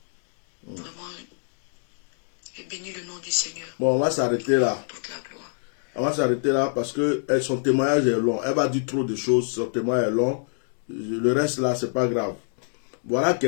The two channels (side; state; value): right; silent; digital silence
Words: Vraiment, j'ai béni le nom du Seigneur. Bon, on va s'arrêter là. Toute la gloire. On va s'arrêter là parce que son témoignage est long. Elle va dire trop de choses, son témoignage est long. Le reste là, c'est pas grave. Voilà